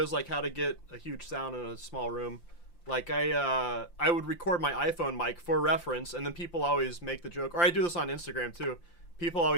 like how to get a huge sound in a small room. Like I would record my iPhone mic for reference, and then people always make the joke, or I do this on Instagram too. People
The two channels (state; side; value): late; right; 5.8 ms